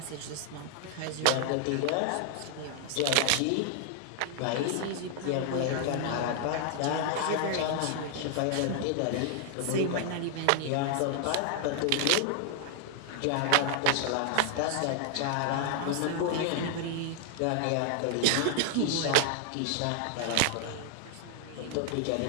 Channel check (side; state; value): both; different; correlation 0.00